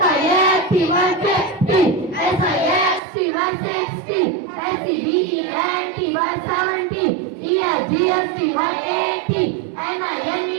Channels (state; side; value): drops out; left; at 3.0 s